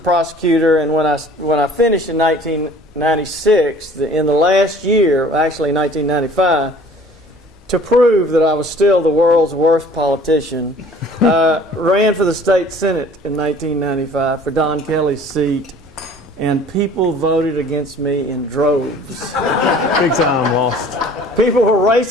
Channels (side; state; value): both; normal; correlation 0.50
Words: and when I finished in 1996, in the last year, actually 1995, to prove that I was still the world's worst politician, ran for the state senate in 1995 for Don Kelly's seat, and people voted against me in droves. Big time lost. People were